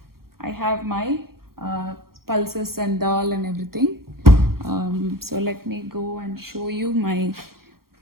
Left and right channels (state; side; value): late; left; 0.93 ms